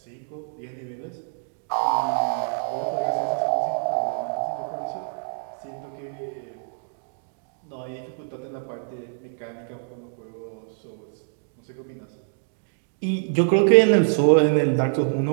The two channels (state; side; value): silent; left; digital silence